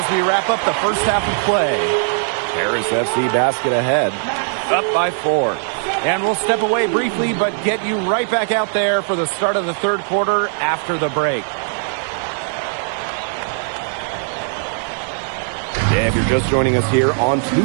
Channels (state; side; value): silent; left; 58 dB below the other